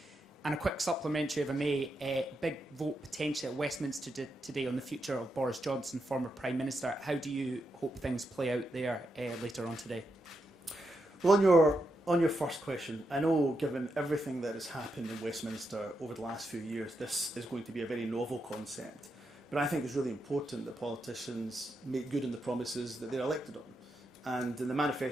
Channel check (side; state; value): both; normal; correlation 0.84